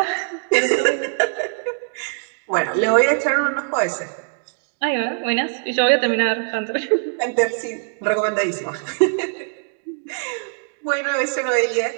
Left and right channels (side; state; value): left; silent; digital silence